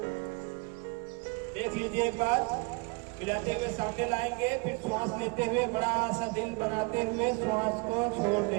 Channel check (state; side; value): quieter; left; 29.7 dB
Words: देख लीजिए एक बार, मिलाते हुए सामने लाएंगे, फिर श्वास लेते हुए बड़ा सा दिल बनाते हुए श्वास को छोड़